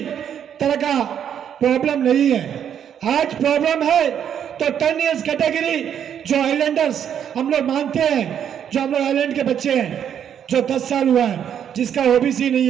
तरह का प्रॉब्लम नहीं है। आज प्रॉब्लम है तो 10 इयर्स कैटेगरी जो आइलैंडर्स हम लोग मानते हैं, जो हम लोग आइलैंड के बच्चे हैं, जो 10 साल हुआ है, जिसका ओबीसी नहीं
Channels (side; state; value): left; quieter; 8.9 dB